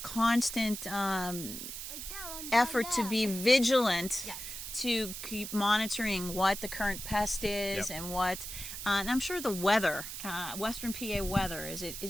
constant effort to be vigilant, Yes. to keep monitoring what the current pest is Yep. and what. And I'm sure the weather, Western PA weather, is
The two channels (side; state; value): right; noise; hiss, 8 dB below the sound